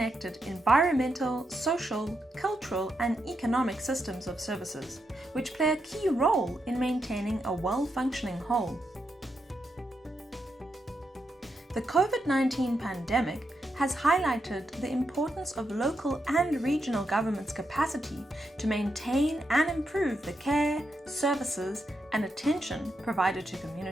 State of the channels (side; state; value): both; normal; correlation 0.83